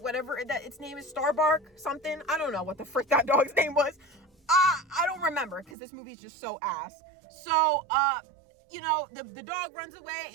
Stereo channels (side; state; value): left; drops out; at 5.8 s